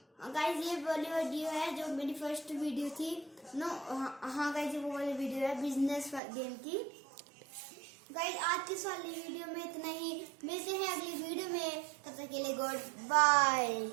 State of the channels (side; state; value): left; drops out; at 6.2 s